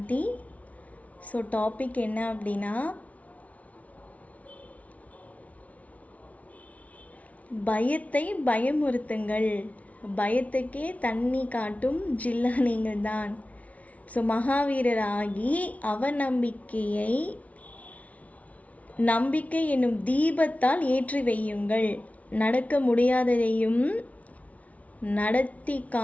ஸோ டாபிக் என்ன அப்படின்னா, பயத்தை பயமுறுத்துங்கள், பயத்துக்கே தண்ணி காட்டும் ஜில்லா நீங்கள் தான். ஸோ மகாவீரராகி அவநம்பிக்கையை நம்பிக்கை என்னும் தீபத்தால் ஏற்றி வையுங்கள். நடக்க முடியாததையும் நடத்தி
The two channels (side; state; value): right; late; 0.068 ms